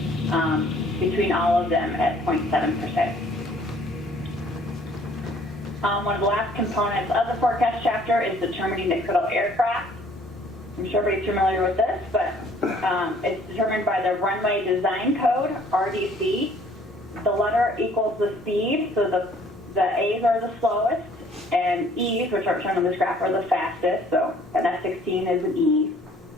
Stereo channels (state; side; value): normal; both; correlation 0.58